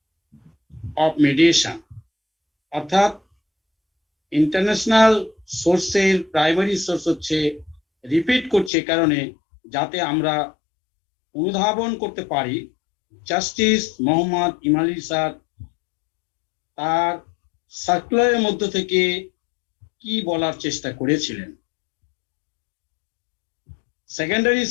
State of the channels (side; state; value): right; drops out; at 8.7 s